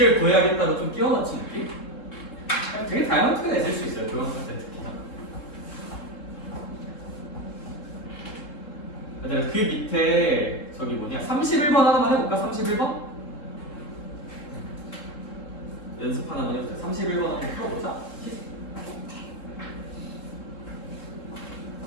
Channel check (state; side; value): late; right; 3.7 ms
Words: 구해야겠다고 좀 끼워 맞춘 느낌? 되게 다양한 투가 있을 수 있어요, 도형사 때 특히나. 그 밑에 저기 뭐냐 31번 하나만 해볼까? 31번? 연습 하나만 해보자. 31번 한번 풀어보자.